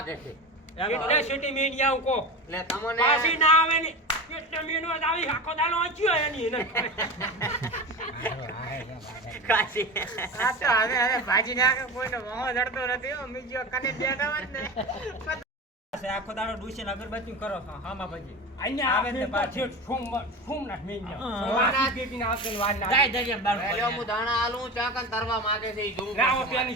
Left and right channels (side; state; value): both; normal; correlation 0.27